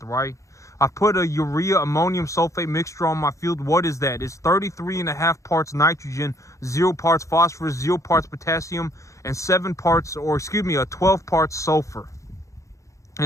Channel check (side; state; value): right; late; 0.15 ms